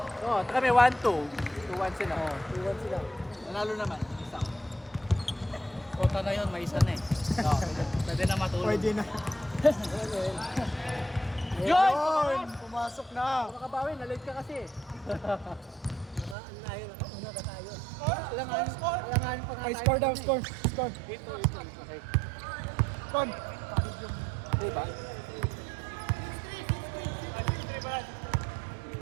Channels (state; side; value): drops out; left; at 16.4 s